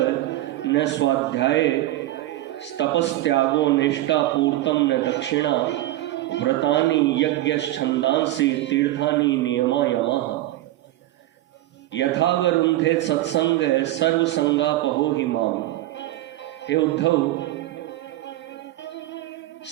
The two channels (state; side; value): quieter; left; 15.7 dB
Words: न स्वाध्याय तपस्त्यागो निष्ठा पूर्तम न दक्षिणा। व्रतानि यज्ञश्छन्दांसि तीर्थानि नियमा यमाः। यथा वरुन्धे सत्संग सर्वसंगापहो हि माम। हे उद्धव,